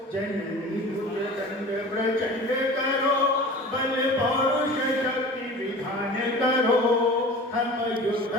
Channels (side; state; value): both; normal; correlation 0.39